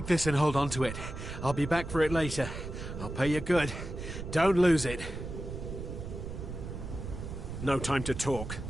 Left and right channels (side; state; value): right; noise; rumble, 7 dB below the sound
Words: this and hold on to it. I'll be back for it later. I'll pay you good. Don't lose it. No time to talk.